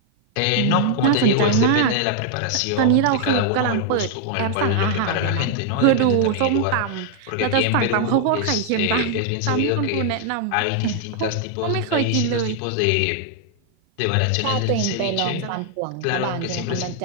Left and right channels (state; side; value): different; both; correlation 0.00